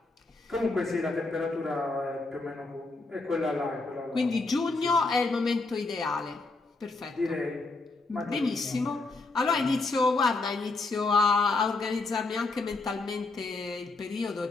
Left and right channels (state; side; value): quieter; right; 3.5 dB